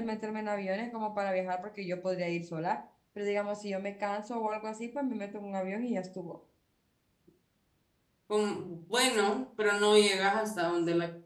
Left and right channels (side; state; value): both; identical; correlation 1.00